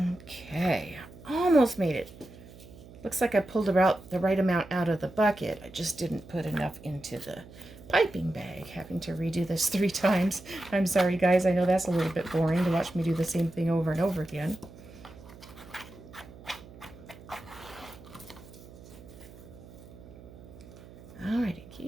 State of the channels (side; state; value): right; noise; hum, 19 dB below the sound